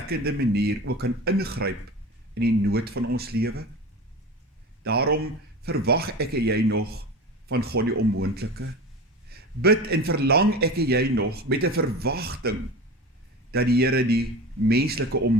manier ook kan ingryp in die nood van ons lewe? Daarom verwag ek en jy nog van God die onmoontlike. Bid en verlang ek en jy nog met 'n verwagting dat die Here die menslike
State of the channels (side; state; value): both; normal; correlation 0.31